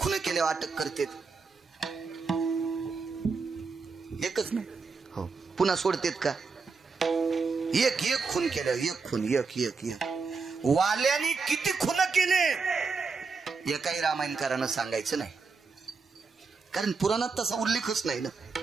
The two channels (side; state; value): left; quieter; 4.7 dB